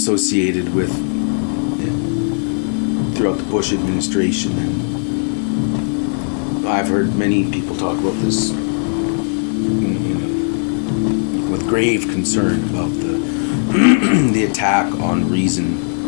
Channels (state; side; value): silent; right; digital silence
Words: with throughout the Bush administration. And I've heard many people talk about this with grave concern about the attack on reason